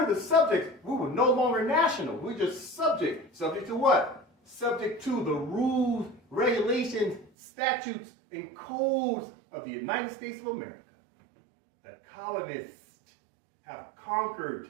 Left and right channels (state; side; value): drops out; left; at 7.3 s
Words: the subjects. We were no longer national. We're just subject. Subject to what? Subject to the rules, regulations, statutes, and codes of the United States of America. The colonists have